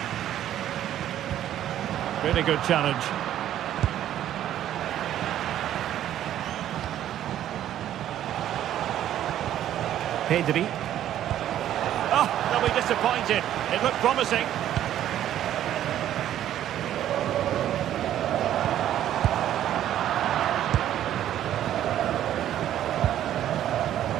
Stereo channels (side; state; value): left; quieter; 11.7 dB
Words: Really good challenge. Pedri. Oh, they'll be disappointed. It looked promising.